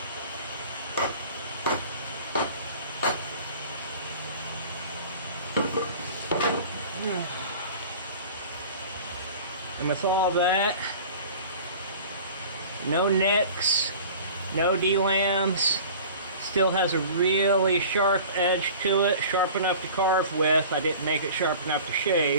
And with all that, no nicks, no D-lambs, still has a really sharp edge to it, sharp enough to carve with. I didn't make it sharp enough to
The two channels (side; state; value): both; inverted; correlation -0.42